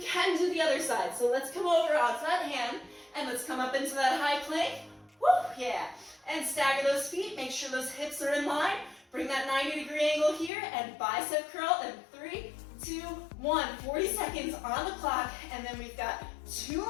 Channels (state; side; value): drops out; right; at 10.5 s